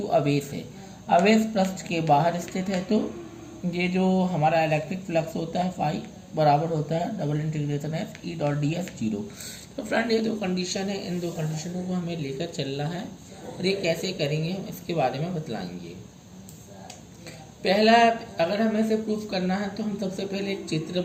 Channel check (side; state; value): both; identical; correlation 1.00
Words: आवेश है। आवेश पृष्ठ के बाहर स्थित है तो ये जो हमारा इलेक्ट्रिक फ्लक्स होता है फाई बराबर होता है double integration S E dot D S zero. तो फ्रेंड ये दो कंडीशन है, इन दो कंडीशनों को हमें लेकर चलना है और ये कैसे करेंगे हम इसके बारे में बतलाएंगे। पहला, अगर हमें इसे प्रूफ करना है तो हम सबसे पहले एक चित्र